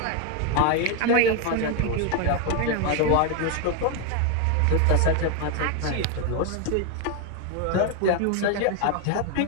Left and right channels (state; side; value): different; both; correlation 0.01